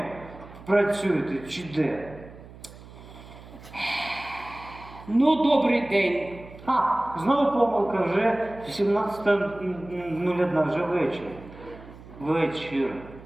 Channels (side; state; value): right; noise; hum, 18 dB below the sound